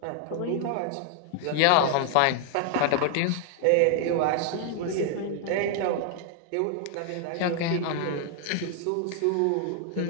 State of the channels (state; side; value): different; both; correlation 0.00